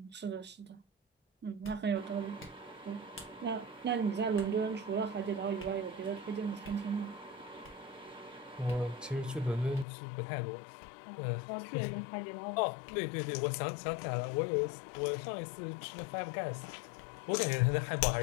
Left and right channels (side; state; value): right; drops out; at 9.9 s